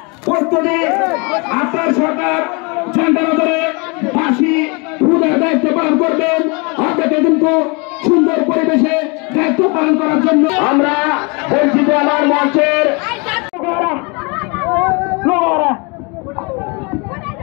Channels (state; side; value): quieter; right; 30.5 dB